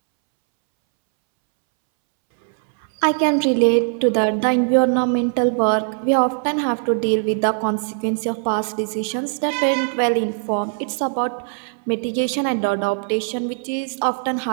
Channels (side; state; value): left; silent; 65 dB below the other